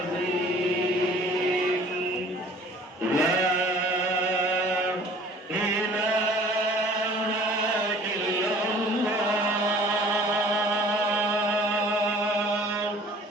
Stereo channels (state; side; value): normal; both; correlation 0.50